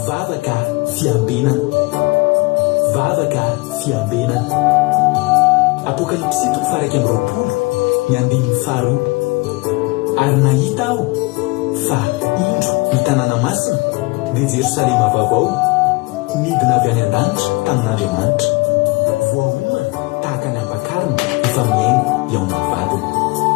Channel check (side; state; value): right; quieter; 25.1 dB